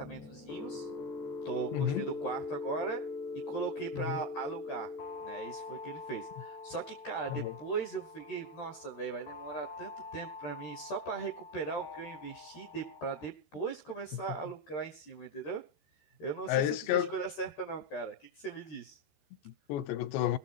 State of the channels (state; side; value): late; right; 14 ms